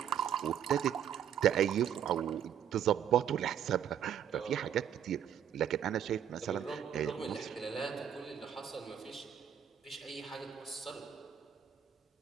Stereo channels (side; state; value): left; quieter; 9.2 dB